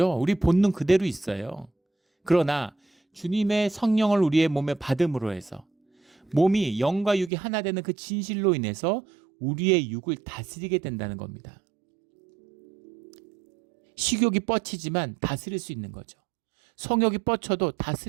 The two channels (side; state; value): left; drops out; at 7.3 s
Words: 우리 본능 그대로 있어요. 그러나 주님의 성령을 우리의 몸에 받음으로 해서 몸이 영과 육이 하나 되는 그 진실로 인해서 우리의 육을 다스리게 된다는 겁니다. 식욕이 뻗치지만 다스릴 수 있는 거죠. 성욕이 뻗쳐도